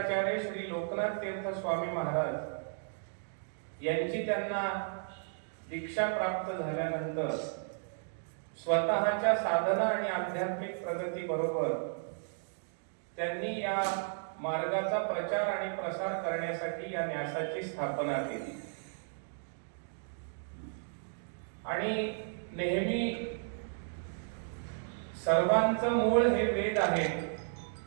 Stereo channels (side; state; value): left; silent; digital silence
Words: श्री लोकनाथ तीर्थ स्वामी महाराज यांची त्यांना दीक्षा प्राप्त झाल्यानंतर स्वतःच्या साधना आणि आध्यात्मिक प्रगती बरोबर त्यांनी या मार्गाचा प्रचार आणि प्रसार करण्यासाठी या न्यासाची स्थापना केली। आणि नेहमी सर्वांचं मूळ हे वेद आहे